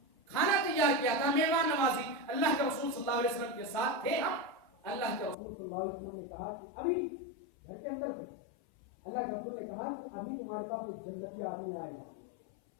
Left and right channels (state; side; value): drops out; right; at 5.4 s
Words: کیا تھا، مہمان نوازی. اللہ کے رسول صلی اللہ علیہ وسلم کے ساتھ تھے ہم. اللہ کے رسول صلی اللہ علیہ وسلم نے کہا کہ ابھی گھر کے اندر تھے، اللہ کے رسول نے کہا کہ ابھی تمہارے پاس ایک جنتی آدمی آئے گا.